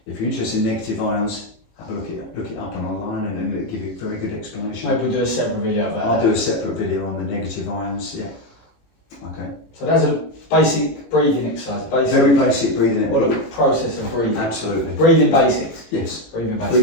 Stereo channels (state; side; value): late; right; 18 ms